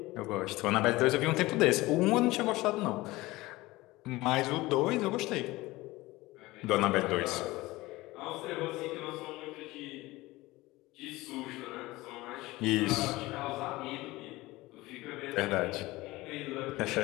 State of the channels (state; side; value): quieter; right; 19.7 dB